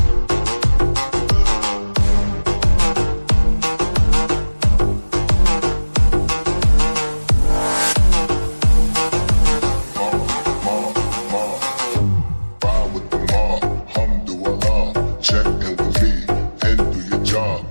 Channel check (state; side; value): inverted; both; correlation -1.00